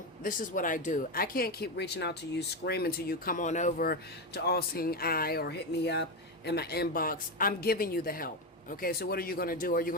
this is what I do. I can't keep reaching out to you, screaming to you, come on over to All Seeing Eye or hit me up in my inbox. I'm giving you the help. Okay, so what are you going to do? Are you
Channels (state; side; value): normal; both; correlation 0.12